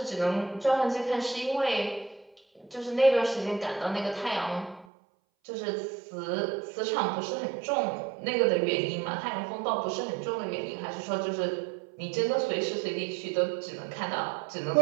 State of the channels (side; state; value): left; drops out; at 4.9 s